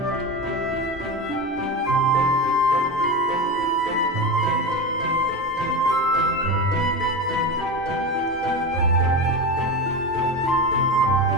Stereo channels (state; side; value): normal; both; correlation 0.23